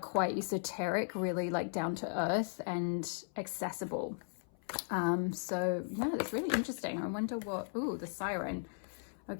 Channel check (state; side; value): silent; right; 53 dB below the other